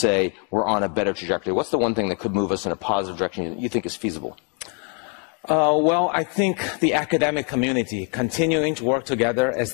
we're on a better trajectory? What's the one thing that could move us in a positive direction that you think is feasible? Well, I think the academic community continuing to work together as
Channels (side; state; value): right; quieter; 39.0 dB